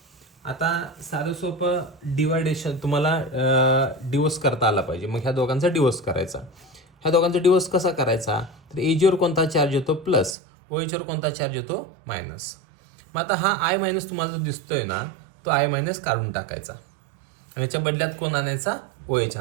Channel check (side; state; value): left; drops out; at 10.4 s